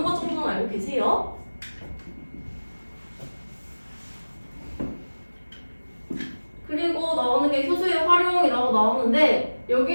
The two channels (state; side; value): inverted; both; correlation -1.00